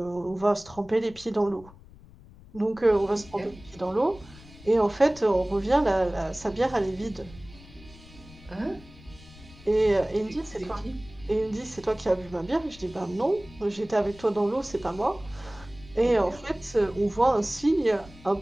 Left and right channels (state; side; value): noise; left; rumble, 21 dB below the sound